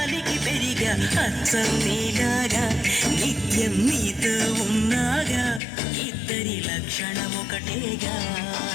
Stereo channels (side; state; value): right; drops out; at 5.6 s